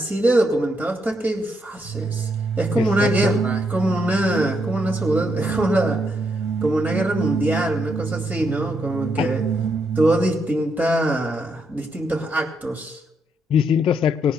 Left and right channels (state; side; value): normal; both; correlation 0.77